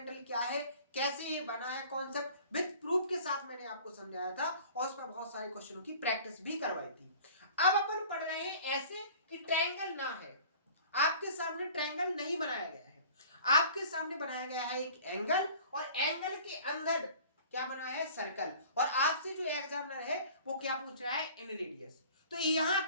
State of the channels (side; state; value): both; inverted; correlation -0.46